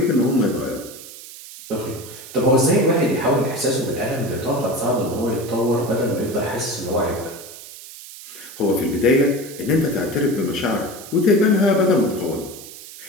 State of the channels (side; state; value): right; noise; hiss, 15 dB below the sound